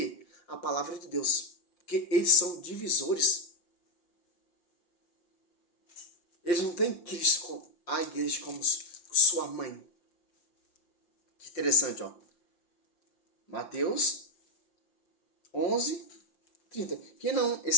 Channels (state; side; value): late; right; 5.7 ms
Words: A palavra de Deus. Porque eles são divisores. Eles não têm Cristo, a igreja, como sua mãe. Que interessante, ó. Mateus 11, 30. Quem não